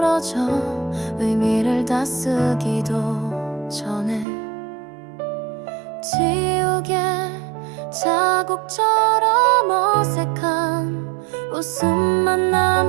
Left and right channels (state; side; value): drops out; left; at 4.2 s